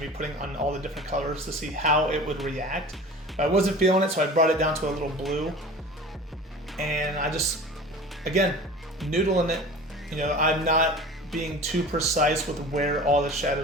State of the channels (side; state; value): both; normal; correlation 0.38